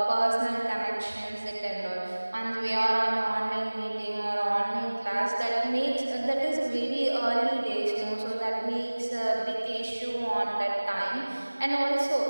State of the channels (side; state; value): both; inverted; correlation -1.00